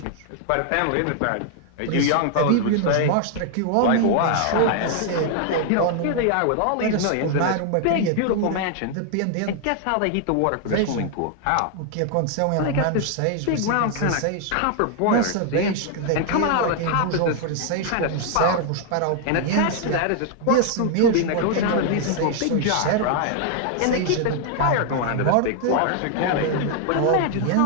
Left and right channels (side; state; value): both; different; correlation 0.00